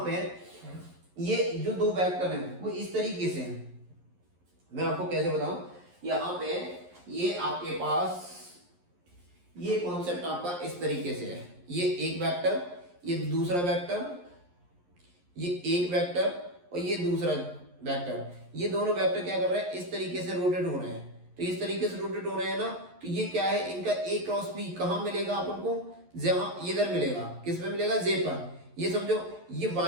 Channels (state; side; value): late; left; 11 ms